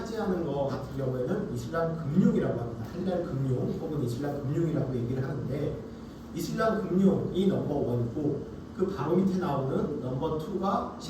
것 같은 경우에는 이슬람 금융이라고 합니다. 할랄 금융 혹은 이슬람 금융이라고 얘기를 하는데 이슬람 금융이 넘버1이고 그 바로 밑에 나오는 넘버2가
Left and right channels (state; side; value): identical; both; correlation 1.00